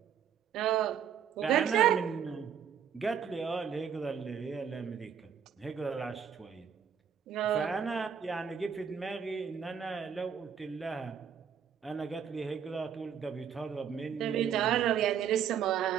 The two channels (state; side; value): quieter; left; 7.9 dB